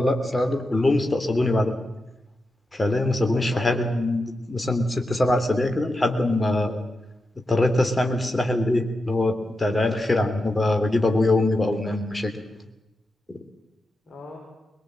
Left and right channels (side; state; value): both; normal; correlation 0.88